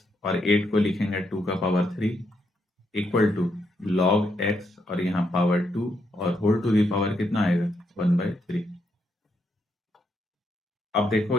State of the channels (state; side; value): normal; both; correlation 0.78